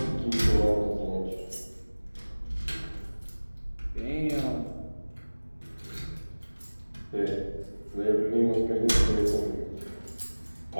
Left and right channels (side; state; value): both; inverted; correlation -1.00